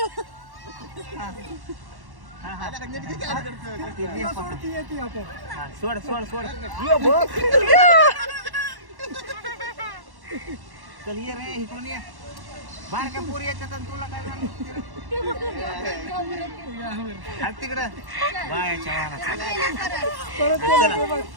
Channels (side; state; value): left; late; 1.1 ms